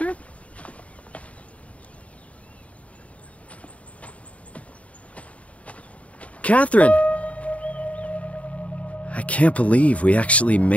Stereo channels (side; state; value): right; late; 0.066 ms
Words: Catherine! I can't believe we actually